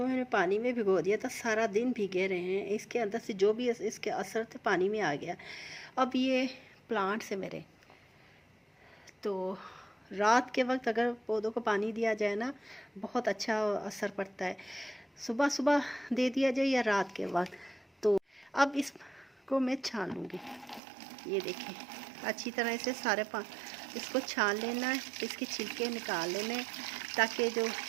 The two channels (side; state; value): left; drops out; at 20.8 s